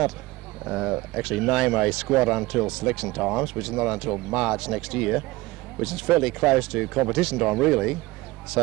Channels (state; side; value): quieter; left; 20.3 dB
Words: actually name a squad until selection times, which is not until March next year, which is fairly close to competition time really.